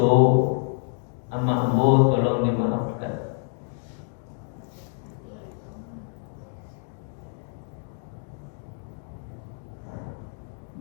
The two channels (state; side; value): silent; right; 60 dB below the other